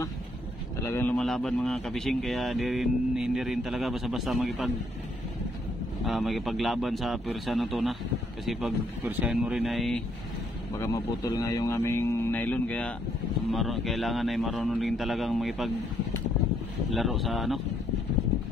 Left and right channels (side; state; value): both; normal; correlation 0.71